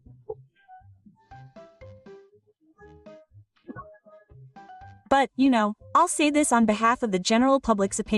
But, you know, I'll say this on behalf of the general public's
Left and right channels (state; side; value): identical; both; correlation 1.00